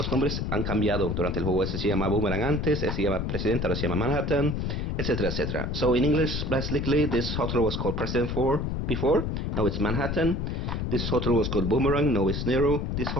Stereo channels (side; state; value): left; noise; rumble, 2 dB below the sound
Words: nombres han cambiado durante el juego. Ese se llama Boomerang antes, ese se llama President, ahora se llama Manhattan, etcétera, etcétera. So in English, basically, this hotel was called President before, now it's Manhattan. This hotel was called Boomerang, now it's Nero. This